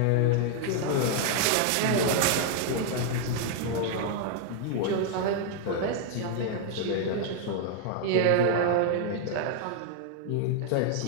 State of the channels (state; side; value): different; both; correlation 0.00